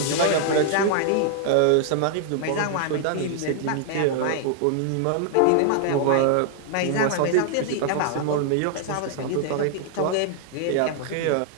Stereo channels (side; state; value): both; different; correlation 0.00